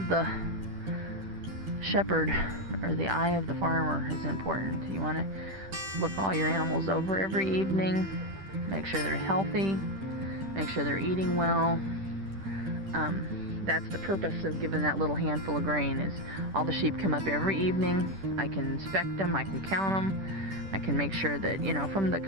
the shepherd, or the eye of the farmer, is important. You want to look all your animals over every evening, make sure they're healthy, make sure they're eating well. That's the purpose of giving that little handful of grain, is all the sheep come up every evening. I can inspect them, I can count them, I can make sure that, from the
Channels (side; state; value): left; late; 10 ms